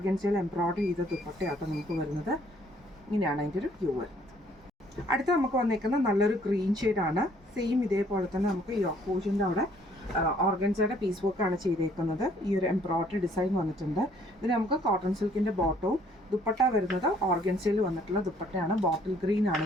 എംബ്രോയിഡറി ചെയ്ത ദുപ്പട്ടയാട്ടോ നമുക്ക് വരുന്നത്. ഇങ്ങനെയാണ് അതിൻ്റെ ഒരു വ്യൂ വരുന്നത്. അടുത്ത നമുക്ക് വന്നേക്കുന്നത് നല്ലൊരു ഗ്രീൻ ഷെയ്ഡാണ്. സെയിം ഇതേപോലെ തന്നെ നമുക്ക് യോക്ക് പോർഷൻ്റെ അവിടെ ഓർഗൻസയുടെ പീസ് വർക്കാണ് ചെയ്തേക്കുന്നത്. ഈ ഒരു എംബ്രോയിഡറി ഡിസൈൻ വന്നിട്ടുണ്ട്. ഇതിന് നമുക്ക് കോട്ടൺ സിൽക്കിൻ്റെ ബോട്ടവും ദുപ്പട്ട വരുന്നത് ഓർഗൻസയിൽ വന്നിട്ടുള്ള ദുപ്പട്ടയാണ്. ബോട്ടിൽ ഗ്രീൻ ആണ്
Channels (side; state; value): both; normal; correlation 0.62